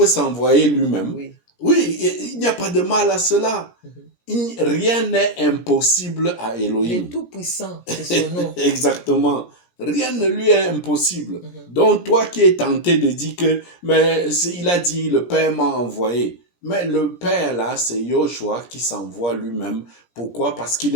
s'envoyer lui-même. Oui. Oui, il n'y a pas de mal à cela. Mhm. Rien n'est impossible à Il est Elohim. tout puissant, c'est son nom. Exactement. Rien ne lui est impossible. Mhm. Donc, toi qui es tenté de dire que, mais il a dit, le Père m'a envoyé. Mais le Père, là, c'est Yoshua qui s'envoie lui-même. Pourquoi? Parce qu'il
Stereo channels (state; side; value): late; right; 17 ms